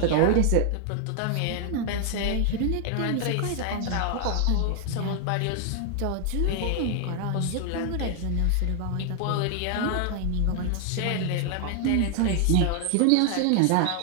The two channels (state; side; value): different; both; correlation 0.00